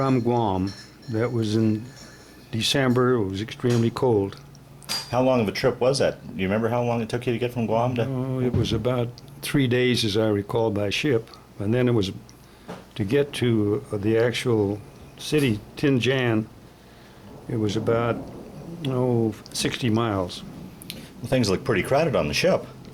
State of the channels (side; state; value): both; identical; correlation 1.00